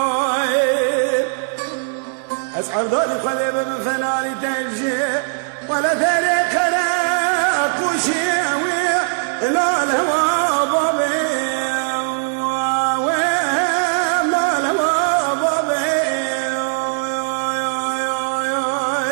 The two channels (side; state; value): left; silent; 66 dB below the other